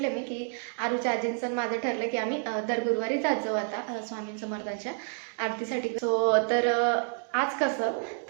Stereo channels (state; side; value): silent; left; 58 dB below the other